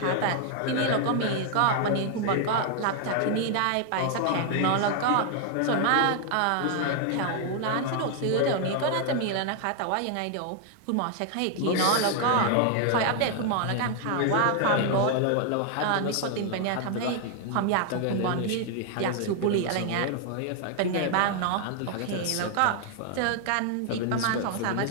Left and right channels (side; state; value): both; different; correlation 0.00